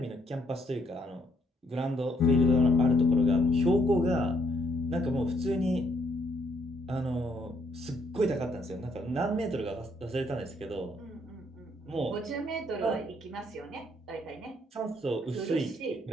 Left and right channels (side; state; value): both; normal; correlation 0.70